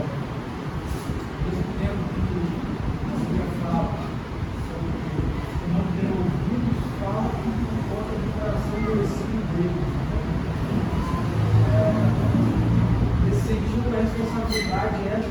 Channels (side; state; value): both; identical; correlation 1.00